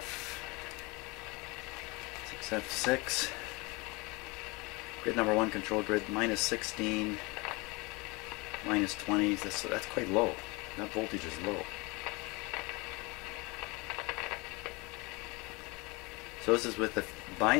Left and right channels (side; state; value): right; quieter; 26.0 dB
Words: 6F6. Grid number 1 control grid, minus 16, minus 20. That's quite low. That voltage is low. So this is with the